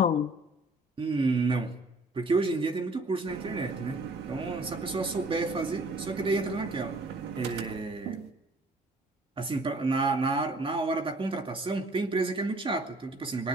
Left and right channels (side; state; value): both; normal; correlation 0.56